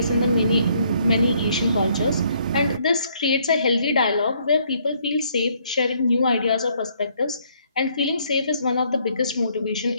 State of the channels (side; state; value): both; inverted; correlation -0.67